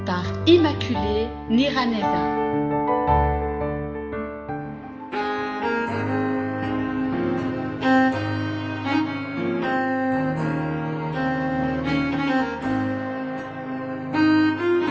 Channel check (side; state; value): both; identical; correlation 1.00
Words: par Immaculée Niraneza.